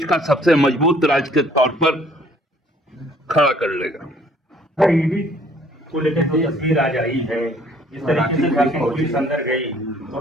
का सबसे मजबूत राज्य के तौर पर खड़ा कर लेगा। ईडी को लेकर जो तस्वीर आज आई है, इस तरीके से झारखंड पुलिस अंदर गई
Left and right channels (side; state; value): both; normal; correlation 0.59